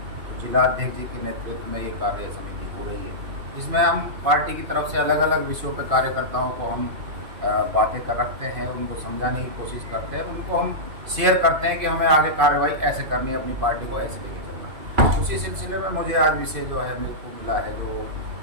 तो जिला अध्यक्ष जी के नेतृत्व में ये कार्य समिति हो रही है, जिसमें हम पार्टी की तरफ से अलग अलग विषयों पर कार्यकर्ताओं को हम बातें कर रखते हैं, उनको समझाने की कोशिश करते हैं, उनको हम शेयर करते हैं कि हमें आगे कार्रवाई ऐसे करनी है, अपनी पार्टी को ऐसे लेके चलना है। उसी सिलसिले में मुझे आज विषय जो है मेरे को मिला है जो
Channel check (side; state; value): left; late; 2.5 ms